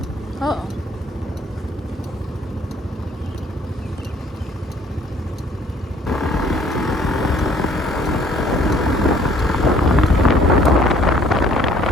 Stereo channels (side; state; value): both; normal; correlation 0.59